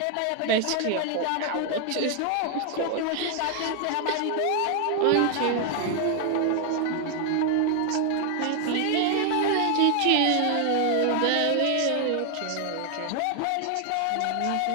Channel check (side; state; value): both; different; correlation 0.00